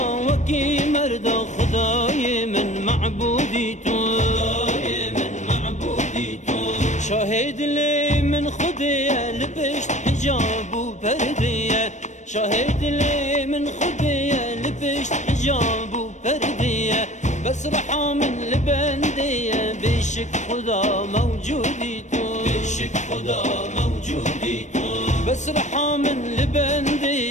وكي مردا خداي من معبودي تو خداي من معبودي تو شاهد لي من خديه لبشت حجاب وبرديه شاهد لي من خديه لبشت حجاب وبرديه بس رحى من البنديه بشك خدا موجودي تو بشك خدا موجودي تو بس رحى من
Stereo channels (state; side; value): late; right; 0.34 ms